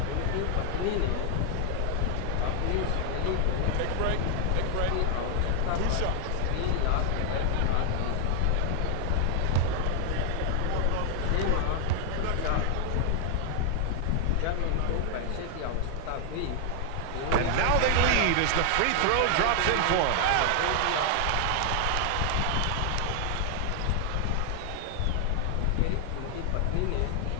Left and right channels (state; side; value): different; both; correlation 0.00